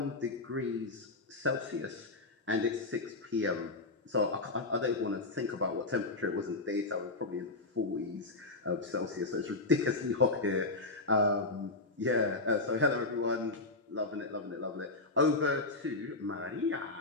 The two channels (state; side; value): quieter; right; 3.2 dB